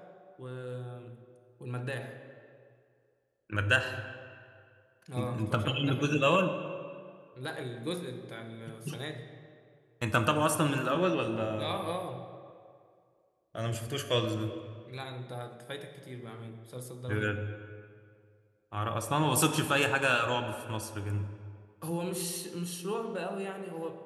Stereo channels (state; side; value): identical; both; correlation 1.00